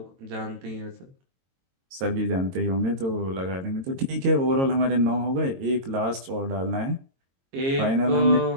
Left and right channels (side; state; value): left; late; 22 ms